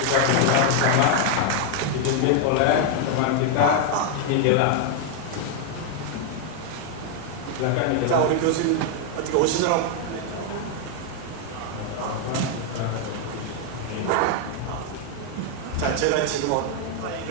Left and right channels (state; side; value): different; both; correlation 0.00